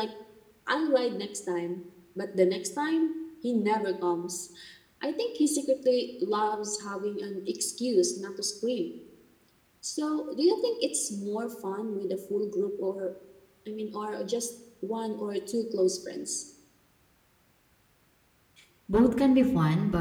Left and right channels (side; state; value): both; identical; correlation 1.00